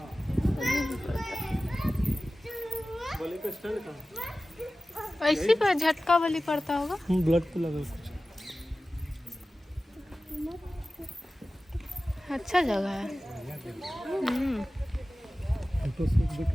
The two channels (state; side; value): normal; both; correlation 0.96